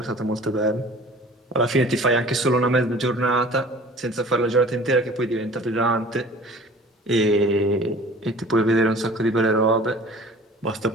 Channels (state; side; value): normal; both; correlation 0.46